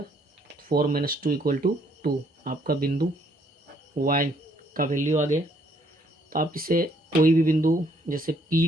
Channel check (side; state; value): both; normal; correlation 0.67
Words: 4 माइनस 2 इक्वल टू 2। आपका बिंदु y का वैल्यू आ गया। तो आप इसे कोई भी बिंदु जैसे P